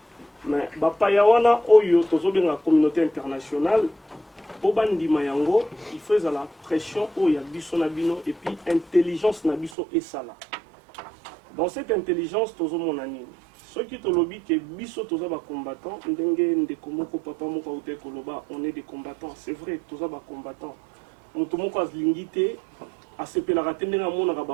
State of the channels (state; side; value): drops out; left; at 9.8 s